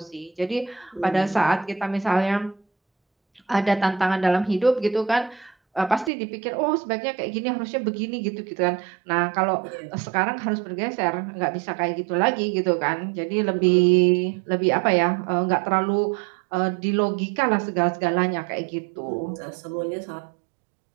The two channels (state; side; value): drops out; left; at 6.1 s